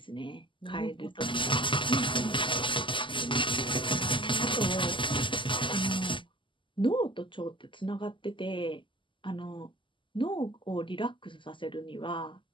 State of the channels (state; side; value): late; right; 0.24 ms